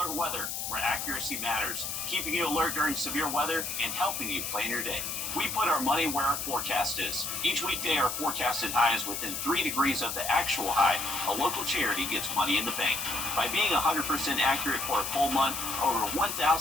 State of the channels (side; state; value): left; noise; hiss, 4 dB below the sound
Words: Weather, where accuracy matters, keeping you alert during severe weather and helping you plan your day. We put our money where our forecast is. Each weekday, our forecasted high is within 3 degrees of the actual high. A local charity gets money in the bank. By being 100% accurate for a full month, over $1,000